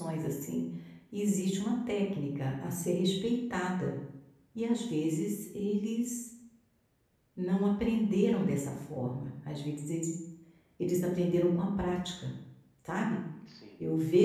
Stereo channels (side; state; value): both; identical; correlation 1.00